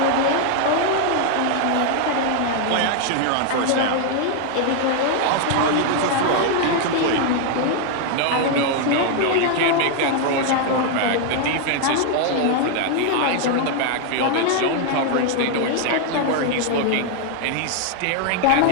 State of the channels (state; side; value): different; both; correlation 0.00